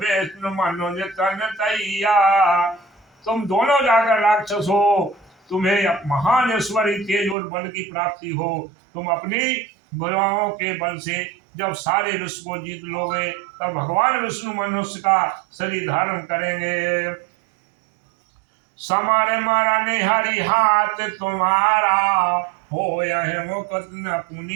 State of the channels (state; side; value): drops out; left; at 7.4 s